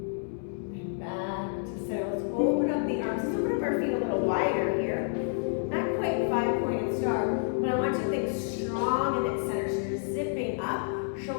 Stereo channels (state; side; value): silent; right; 58 dB below the other